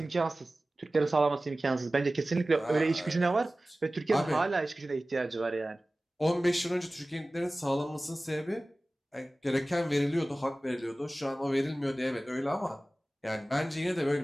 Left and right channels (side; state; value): both; normal; correlation 0.97